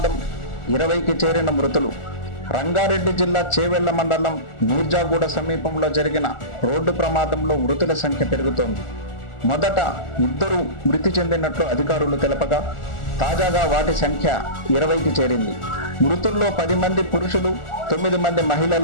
20కి చేరిన మృతులు. రంగారెడ్డి జిల్లా చేవెళ్ల మండలం మీర్జాగూడ సమీపంలో జరిగిన రోడ్డు ప్రమాదంలో మృతుల సంఖ్య పెరుగుతోంది. మొదట 2 మృతి చెందినట్లు అధికారులు తెలపగా తాజాగా వాటి సంఖ్య 20కి చేరింది. మృతుల్లో 10 మంది పురుషులు, 9 మంది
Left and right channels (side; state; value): right; late; 1.4 ms